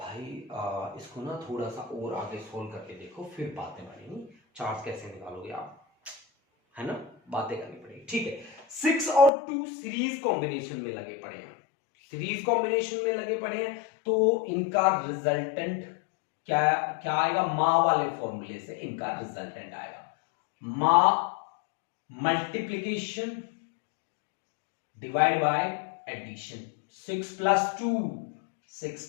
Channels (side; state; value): right; drops out; at 9.3 s